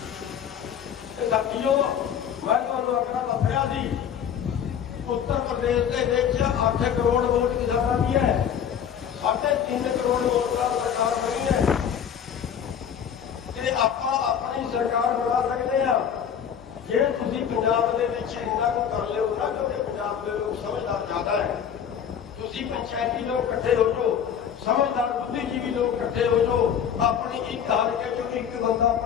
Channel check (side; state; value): right; quieter; 8.4 dB